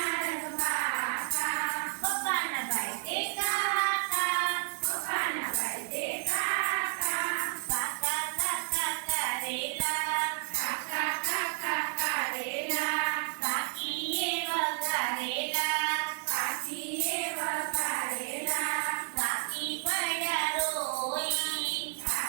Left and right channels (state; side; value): silent; left; 57 dB below the other